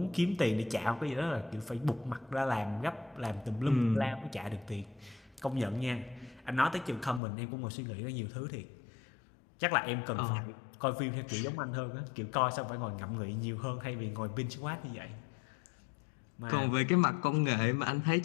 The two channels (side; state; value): right; drops out; at 7.2 s